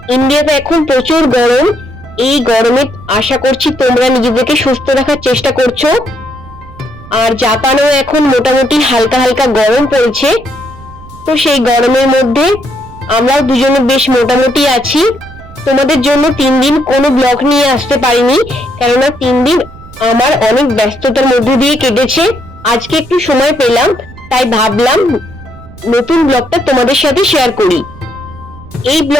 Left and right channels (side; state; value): right; noise; rumble, 19 dB below the sound